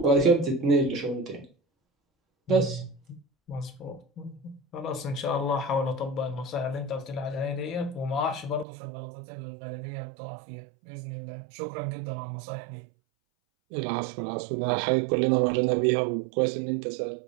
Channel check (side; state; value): left; drops out; at 8.7 s